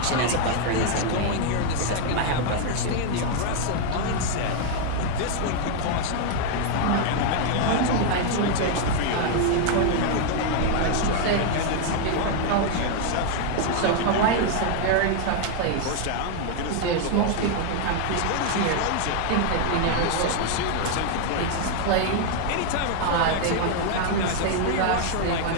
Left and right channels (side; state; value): both; different; correlation 0.00